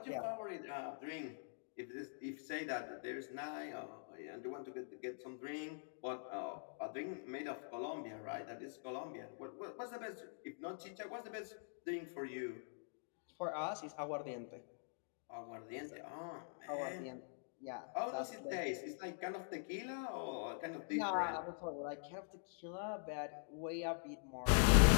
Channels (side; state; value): right; silent; digital silence